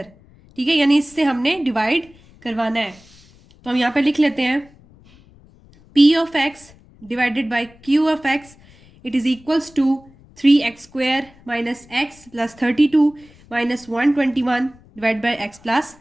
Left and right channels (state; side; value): noise; left; rumble, 27 dB below the sound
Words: ठीक है, यानी इससे हमने डिवाइड करवाना है। तो हम यहाँ पे लिख लेते हैं p of x divided by q of x, it is equals to 3x square minus x plus 32 minus 121 divide by x plus